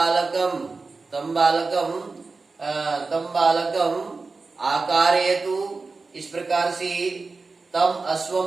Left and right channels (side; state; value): left; quieter; 4.0 dB